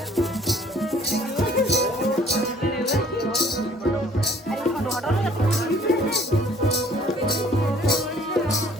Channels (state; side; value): normal; both; correlation 0.56